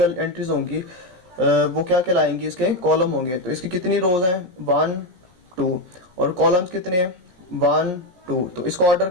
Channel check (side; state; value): left; late; 16 ms